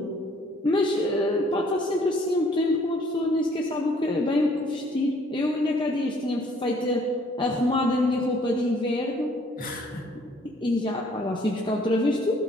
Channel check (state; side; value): normal; both; correlation 0.60